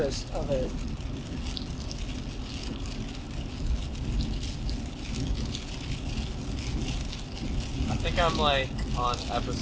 of it. I think I'm like on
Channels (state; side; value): identical; both; correlation 1.00